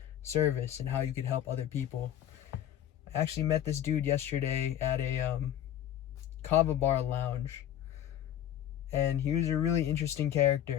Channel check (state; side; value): quieter; right; 10.9 dB